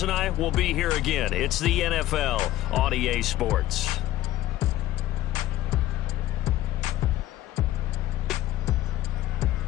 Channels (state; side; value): quieter; right; 14.6 dB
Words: and I will be here again. It's the NFL on EA Sports.